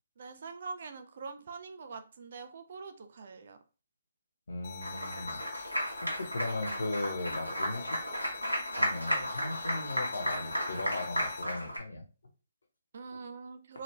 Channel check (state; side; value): inverted; both; correlation -0.86